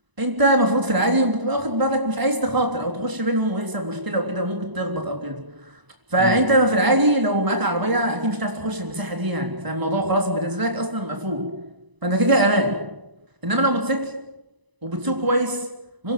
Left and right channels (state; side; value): late; left; 1.0 ms